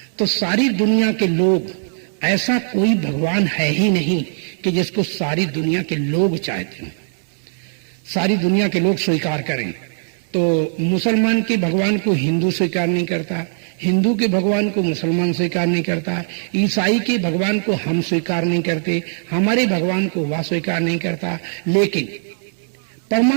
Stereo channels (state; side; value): silent; left; digital silence